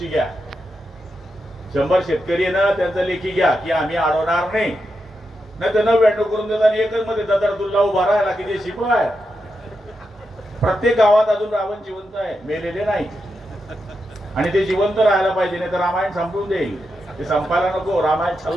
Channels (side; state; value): both; normal; correlation 0.86